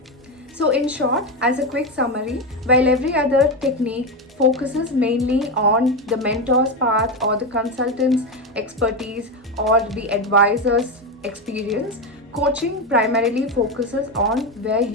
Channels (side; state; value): both; normal; correlation 0.13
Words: So in short, as a quick summary, while every other technique focuses mainly on the mentor's path or the consultant's expertise or the advisor's experience, coaching primarily focuses on where